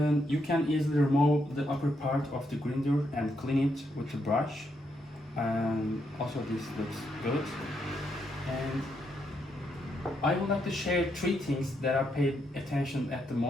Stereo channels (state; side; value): normal; both; correlation 0.78